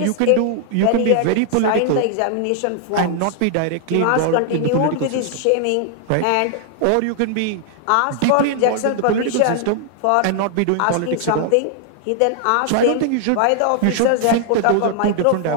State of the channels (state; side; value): different; both; correlation 0.00